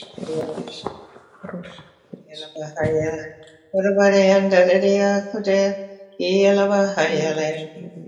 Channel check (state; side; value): identical; both; correlation 1.00